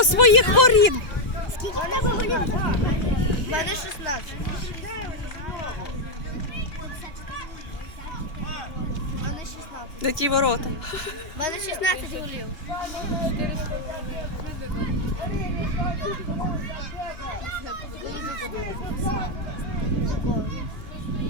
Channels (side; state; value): right; late; 2.9 ms